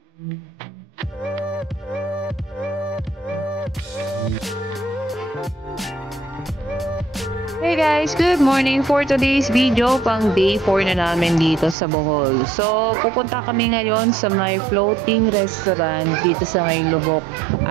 Hey guys, good morning. For today's video, pang day 4 na namin dito sa Bohol. So, pupunta kami ngayon sa may floating restaurant dito sa may Lubok,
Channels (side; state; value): left; drops out; at 11.8 s